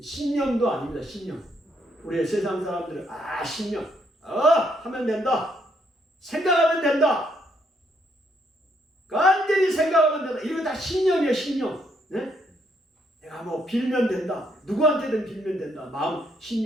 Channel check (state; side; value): normal; both; correlation 0.73